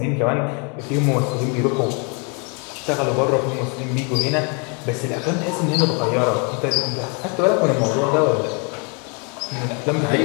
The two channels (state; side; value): quieter; right; 35.4 dB